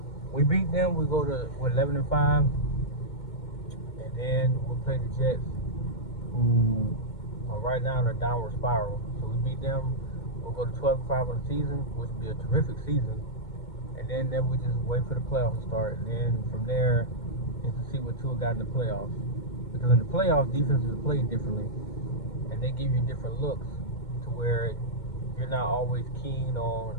We beat them, we go to 11-5, and then we'll play the Jets, who are right now in a downward spiral. So we beat them, we'll go to 12-5 on the season, which would be a terrific season. And then we just wait for the playoffs to start, and then from there is to see what Tua got in the playoffs. Because in the playoffs, defenses play differently, and they give you different looks to where you're not always keen on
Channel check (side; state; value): right; late; 2.2 ms